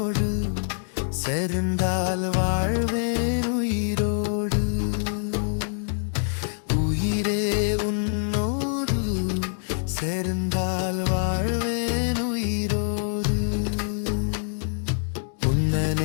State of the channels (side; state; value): right; silent; digital silence